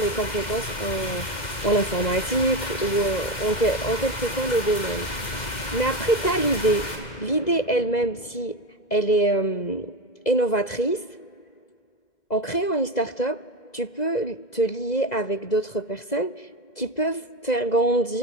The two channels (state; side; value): late; right; 2.0 ms